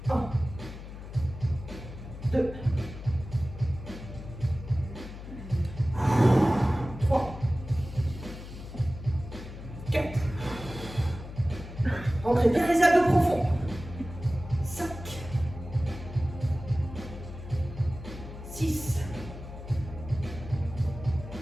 1, 2, 3, 4. Rentrez bien les abdos profonds. 5, 6,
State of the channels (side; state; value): left; noise; hum, 12 dB below the sound